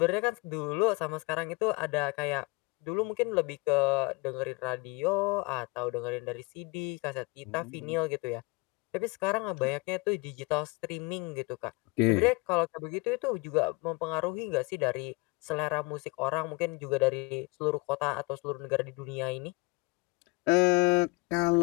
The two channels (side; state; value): right; quieter; 25.5 dB